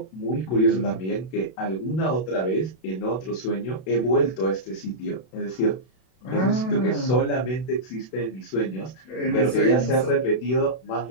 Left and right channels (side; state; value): right; late; 32 ms